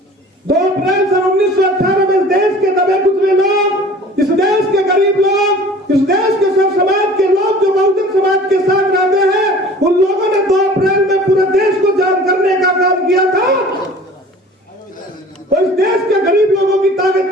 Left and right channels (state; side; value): normal; both; correlation 0.45